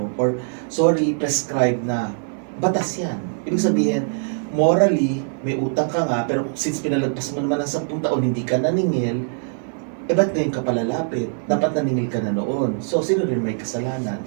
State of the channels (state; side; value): silent; left; 64 dB below the other